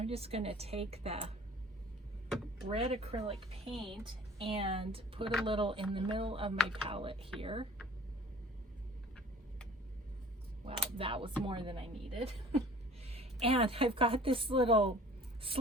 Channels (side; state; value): both; normal; correlation 0.49